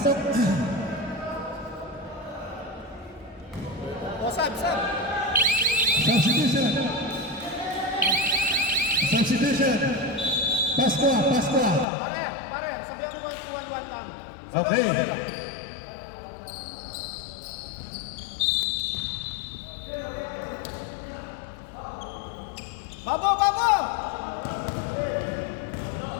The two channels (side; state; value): right; drops out; at 11.9 s